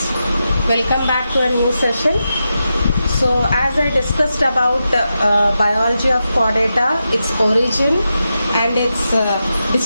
welcome back to a new session. So as I discussed about biology of chordata, its origin and its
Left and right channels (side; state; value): both; inverted; correlation -0.89